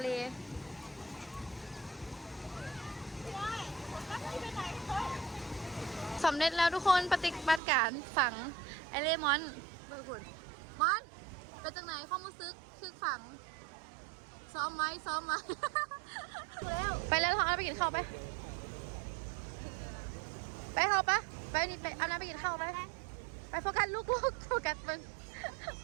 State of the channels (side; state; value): left; drops out; at 7.6 s